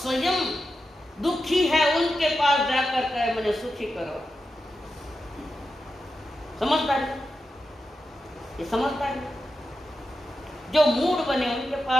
दुखी है उनके पास जाकर कहे मुझे सुखी करो, समझदारी, ये समझदारी। जो मूढ़ बने उनके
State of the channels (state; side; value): normal; both; correlation 0.89